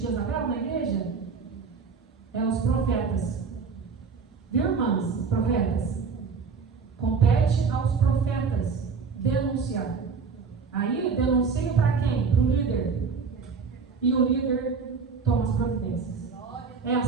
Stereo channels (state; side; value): quieter; left; 5.3 dB